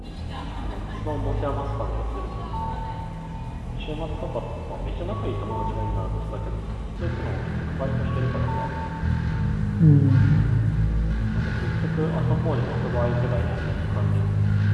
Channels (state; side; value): identical; both; correlation 1.00